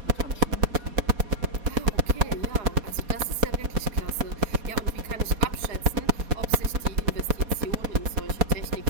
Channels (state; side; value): late; left; 4.2 ms